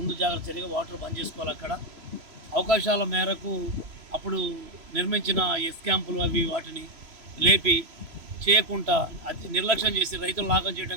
జాగ్రత్త చర్యగా వాటర్ బంద్ చేసుకోవాలి. అక్కడ అవకాశాల మేరకు అప్పుడు నిర్మించిన ఎస్ క్యాంపులు అవి వాటిని లేపి చేయకుండా అది నిర్లక్ష్యం చేసి రైతులు లాగం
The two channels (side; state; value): left; late; 3.0 ms